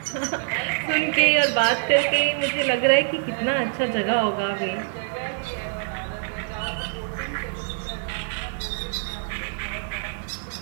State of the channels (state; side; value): silent; left; digital silence